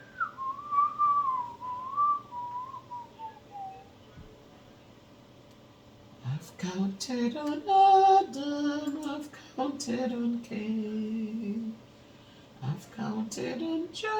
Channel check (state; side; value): identical; both; correlation 1.00